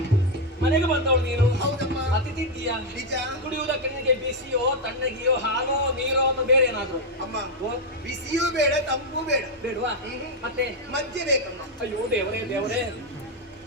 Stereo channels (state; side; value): normal; both; correlation 0.02